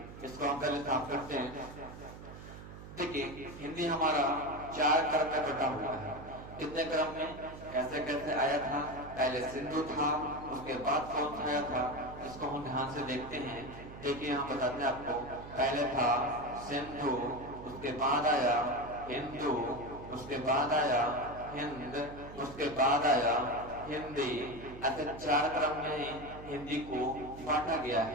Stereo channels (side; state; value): right; noise; hum, 14 dB below the sound